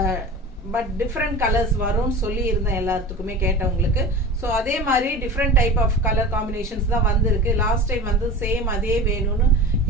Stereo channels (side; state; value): both; normal; correlation 0.33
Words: பட் டிஃப்ரெண்ட் கலர்ஸ் வரும்னு சொல்லி இருந்தேன் எல்லாத்துக்குமே கேட்டவங்களுக்கு. ஸோ அதே மாதிரி different type of colour combinations தான் வந்திருக்கு. லாஸ்ட் டைம் வந்து சேம் அதே வேணும்னு